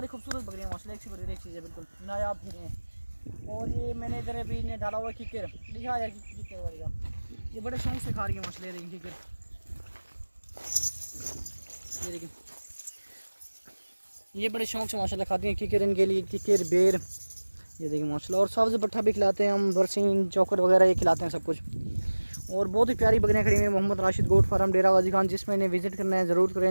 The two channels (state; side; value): inverted; both; correlation -1.00